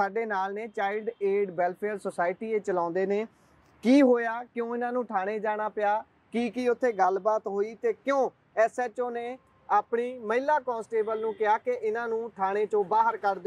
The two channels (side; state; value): both; identical; correlation 1.00